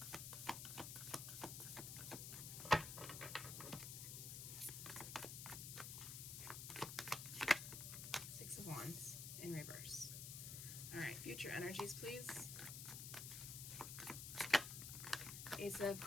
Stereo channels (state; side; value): noise; left; hiss, 6 dB below the sound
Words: Six of Wands in reverse. All right, future energies, please. Ace of